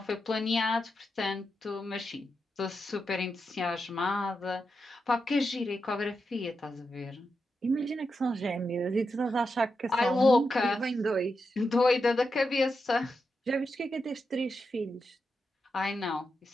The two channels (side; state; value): both; normal; correlation 0.87